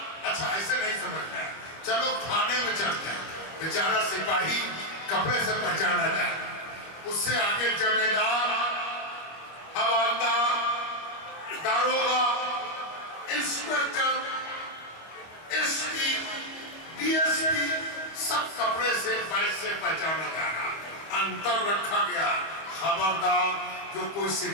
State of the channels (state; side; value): late; right; 25 ms